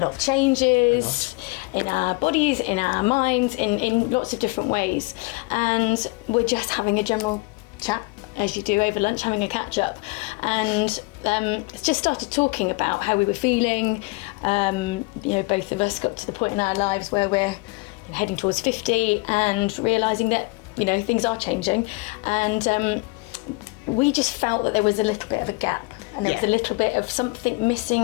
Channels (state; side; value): quieter; right; 26.3 dB